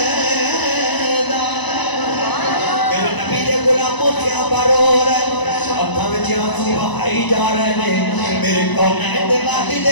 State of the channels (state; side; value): late; right; 1.0 ms